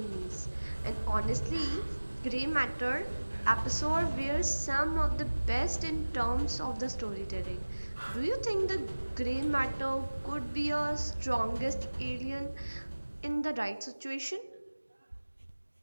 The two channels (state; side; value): inverted; both; correlation -1.00